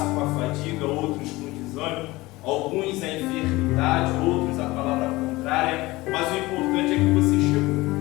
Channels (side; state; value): right; quieter; 20.3 dB